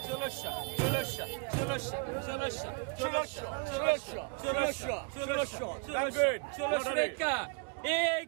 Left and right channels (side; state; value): left; quieter; 33.3 dB